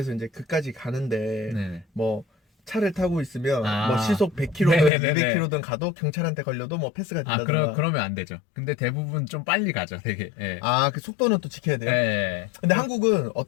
이제 그까지 가는데 뭐 차를 타고 있으면 뭐 시속 100km든 200km든 가도 경찰한테 걸려도 뭐 패스가 된다든가. 그러면 안 되죠. 근데 대부분 좀 빨리 가죠, 되게. 그 속도는 또 지켜야 돼요. 근데 한국은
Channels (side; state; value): right; drops out; at 4.9 s